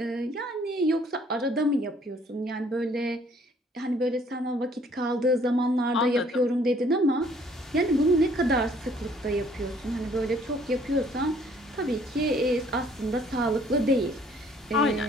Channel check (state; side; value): normal; both; correlation 0.60